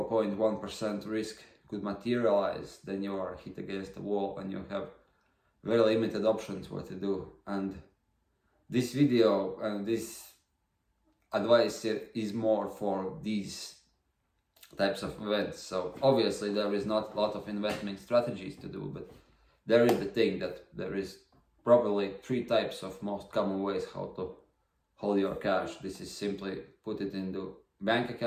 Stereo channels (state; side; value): identical; both; correlation 1.00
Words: risk could materialize, then you are hit against the wall and you have very limited options what to do. And this video and this advice is more for these types of events. So obviously there is not a lot of investment strategies to do, but there is the thing that there is probably 3 types of most common ways how to hold your cash. This is simply put it into bank